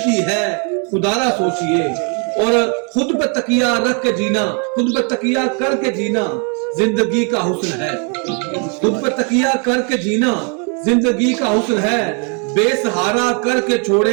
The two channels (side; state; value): left; quieter; 38.3 dB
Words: है खुदारा सोचिए, और खुद पे तकिया रख के जीना, खुद पे तकिया करके जीना जिंदगी का हुस्न है, खुद पे तकिया करके जीना जिंदगी का हुस्न है, बेसहारा करके